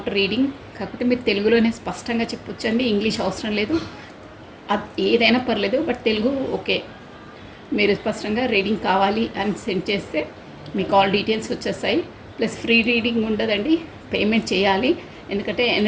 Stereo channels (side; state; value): both; identical; correlation 1.00